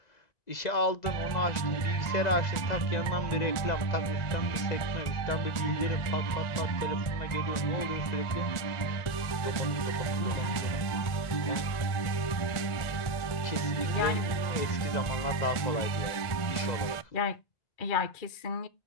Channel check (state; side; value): late; right; 1.4 ms